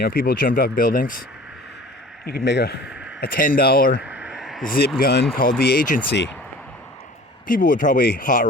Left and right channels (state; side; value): normal; both; correlation 0.44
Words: know, people jumped off buildings. You could make a $10 zip gun called the agency. People would probably